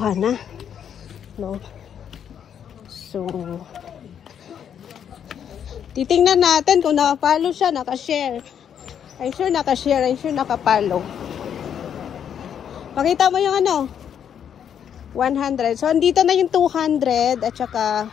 na. No? So, titingnan natin kung nakapalo siya, nakashare. I'm sure nakashare, I'm sure nakapalo. Pakita mo yung 100. So, andito na yung 200 at saka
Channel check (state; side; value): quieter; right; 8.6 dB